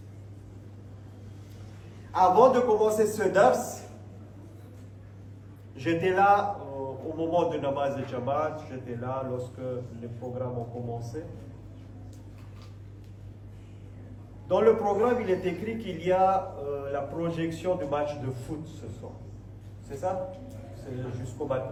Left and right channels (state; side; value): identical; both; correlation 1.00